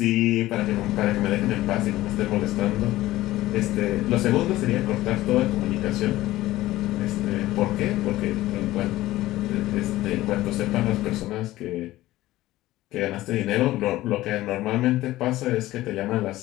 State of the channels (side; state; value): right; quieter; 16.4 dB